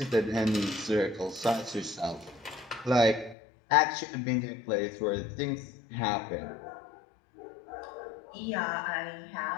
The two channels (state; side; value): drops out; right; at 3.4 s